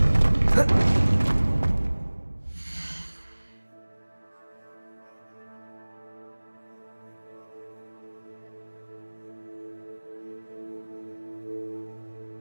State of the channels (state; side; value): inverted; both; correlation -1.00